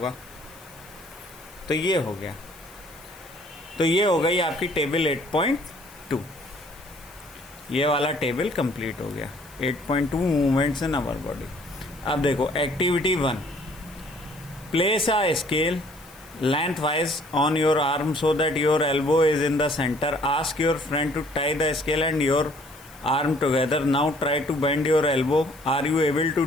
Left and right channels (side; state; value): left; noise; hiss, 23 dB below the sound